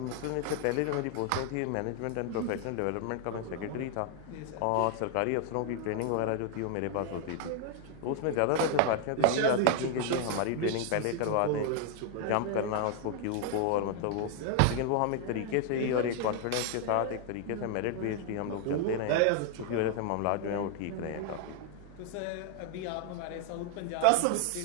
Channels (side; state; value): both; different; correlation 0.00